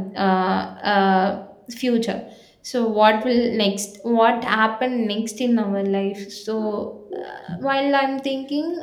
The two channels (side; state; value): both; identical; correlation 1.00